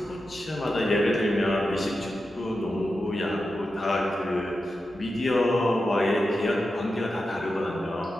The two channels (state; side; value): normal; both; correlation 0.90